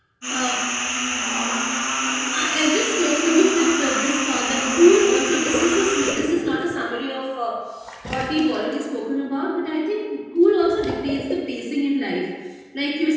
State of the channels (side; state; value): both; identical; correlation 1.00